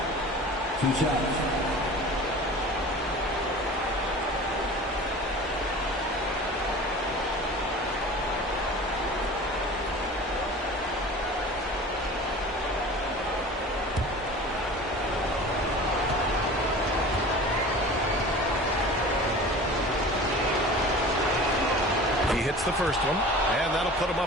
2 shots. The first one, and that'll put him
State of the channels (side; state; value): both; normal; correlation 0.39